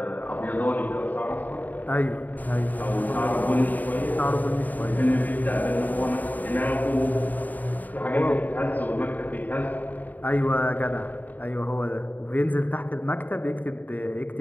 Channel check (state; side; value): late; right; 0.082 ms